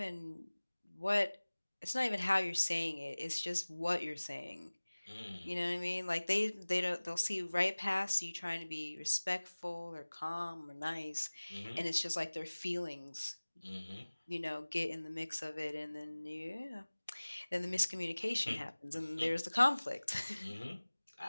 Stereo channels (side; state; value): both; inverted; correlation -1.00